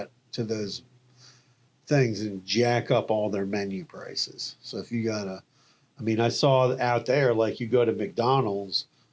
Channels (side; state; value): both; identical; correlation 1.00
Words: to those things, and jack up all their menu prices. So if you I saw out there, like you go to McDonald's